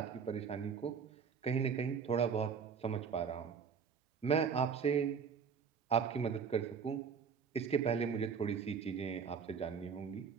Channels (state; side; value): quieter; left; 6.4 dB